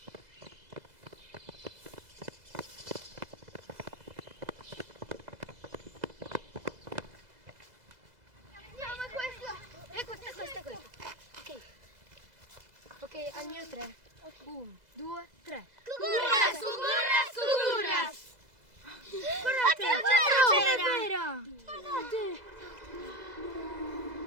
Andiamo, è questo. E questo. Ok, al mio 3. 1, 2, 3. Cucurras, cucurras, cucurras. Guardate, c'era! Guardate!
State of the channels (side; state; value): left; late; 2.0 ms